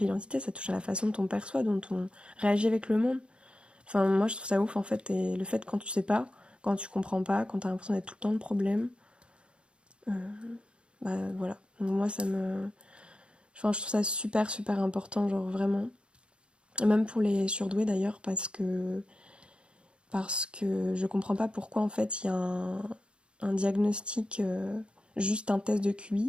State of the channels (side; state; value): left; late; 0.056 ms